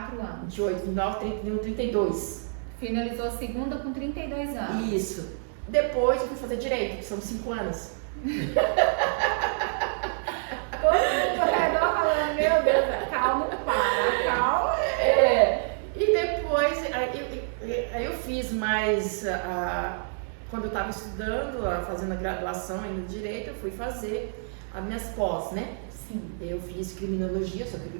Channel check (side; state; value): left; silent; digital silence